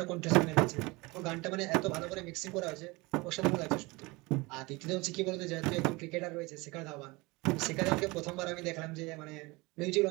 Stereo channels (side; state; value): left; quieter; 24.1 dB